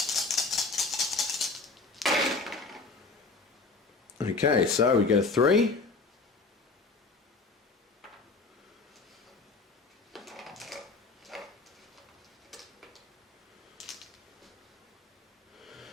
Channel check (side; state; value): right; quieter; 3.9 dB